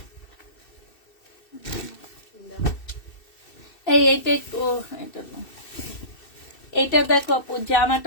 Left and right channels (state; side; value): late; right; 2.6 ms